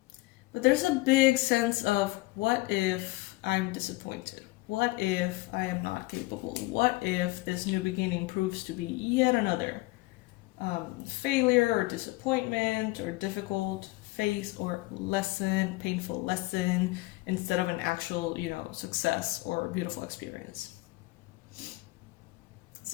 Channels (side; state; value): right; quieter; 21.6 dB